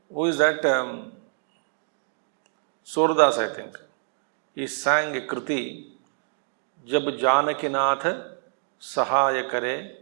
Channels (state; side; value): silent; left; digital silence